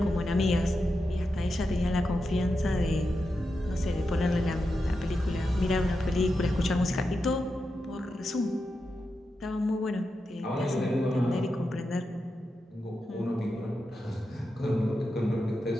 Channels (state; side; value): normal; both; correlation 0.88